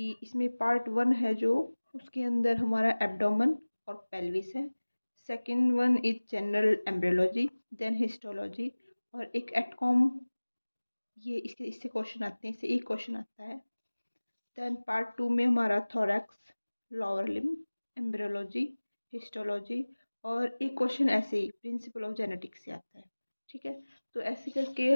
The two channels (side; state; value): both; inverted; correlation -1.00